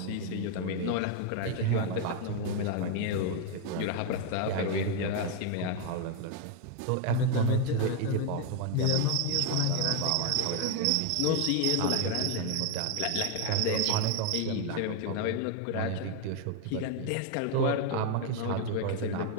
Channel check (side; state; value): both; different; correlation 0.00